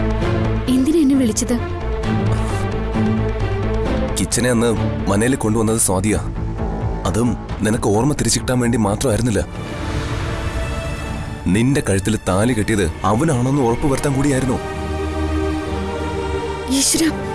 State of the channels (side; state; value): both; identical; correlation 1.00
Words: എന്തിനാ എന്നെ വിളിച്ചത്? കിച്ചനെ അന്ന് മനയിൽ കൊണ്ടുവന്നത് സ്വാതിയാ. അതും നിനക്ക് ഓർമ്മ തിരിച്ചു കിട്ടാൻ വേണ്ടി മാത്രമായിരുന്നില്ല. നിന്റെ കഴുത്തിൽ താലി കെട്ടിയത് അവനാണെന്ന് ഉറപ്പുവരുത്താൻ കൂടിയായിരുന്നു. ഈശ്വര,